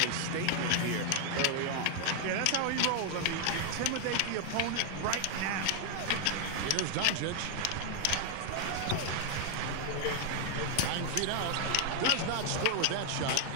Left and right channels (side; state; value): both; different; correlation 0.00